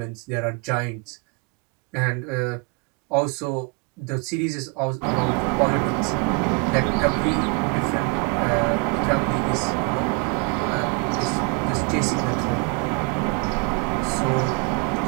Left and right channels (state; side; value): quieter; left; 32.0 dB